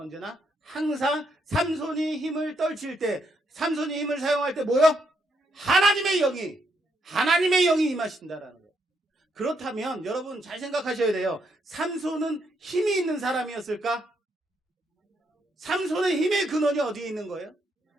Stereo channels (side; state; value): both; normal; correlation 0.77